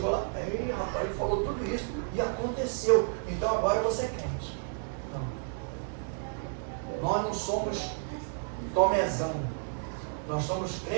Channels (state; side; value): silent; left; digital silence